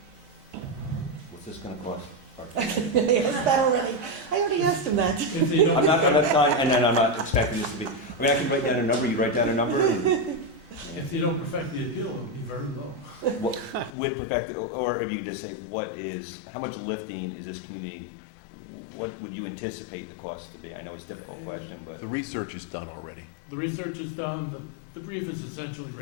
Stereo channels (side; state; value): right; drops out; at 13.9 s